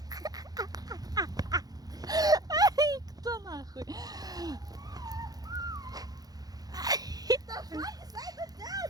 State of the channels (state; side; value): late; left; 0.19 ms